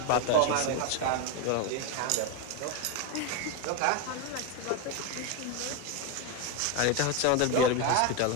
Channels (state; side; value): different; both; correlation 0.02